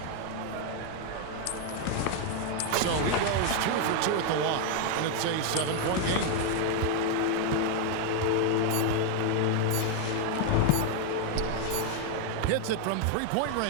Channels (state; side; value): different; both; correlation 0.01